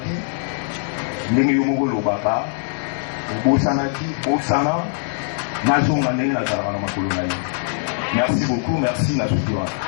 ndenge yo moko lobaka, bosanaki, bosana, nazonga ndenge nazalaka na makolo na yo. Merci beaucoup, merci na sutura.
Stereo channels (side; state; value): right; silent; digital silence